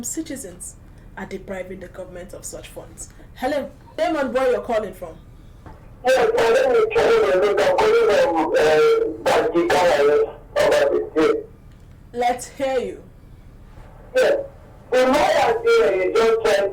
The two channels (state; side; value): identical; both; correlation 1.00